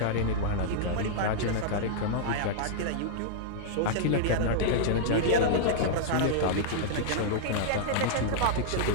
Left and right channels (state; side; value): different; both; correlation -0.02